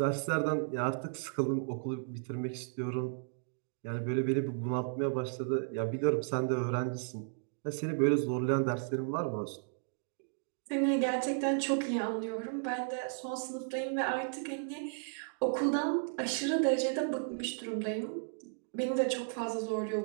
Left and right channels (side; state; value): left; silent; digital silence